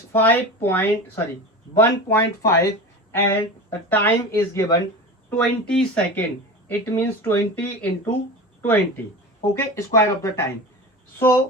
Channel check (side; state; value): both; normal; correlation 0.30